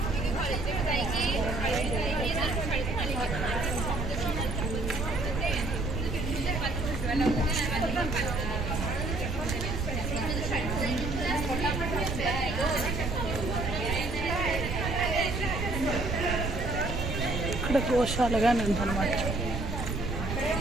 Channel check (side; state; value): right; noise; rumble, 3 dB below the sound